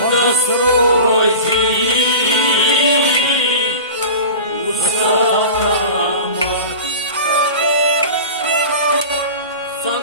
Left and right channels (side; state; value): both; inverted; correlation -0.34